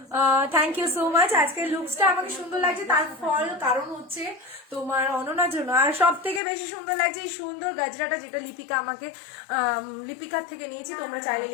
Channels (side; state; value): right; drops out; at 6.4 s